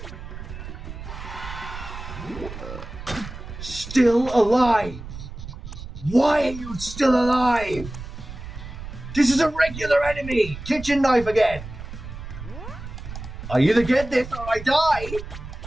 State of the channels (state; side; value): noise; right; rumble, 11 dB below the sound